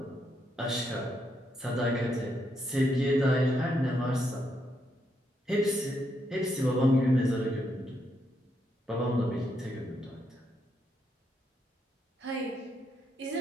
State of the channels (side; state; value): both; normal; correlation 0.78